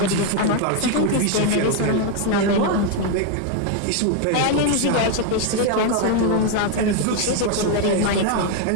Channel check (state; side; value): different; both; correlation 0.01